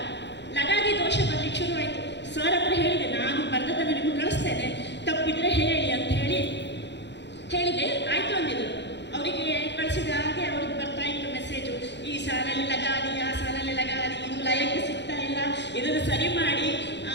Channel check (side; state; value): right; late; 0.51 ms